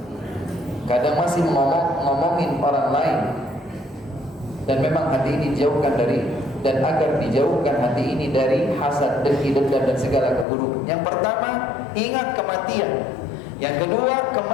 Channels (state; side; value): drops out; right; at 10.5 s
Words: Kadang masih ngomongin orang lain, dan memang hati ini dijauhkan dari, dan agar dijauhkan hati ini dari hasad, dengki, dendam dan segala keburukan. Yang pertama, ingat kematian. Yang kedua,